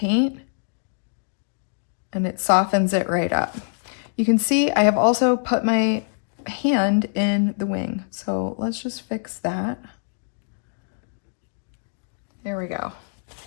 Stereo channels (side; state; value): right; silent; digital silence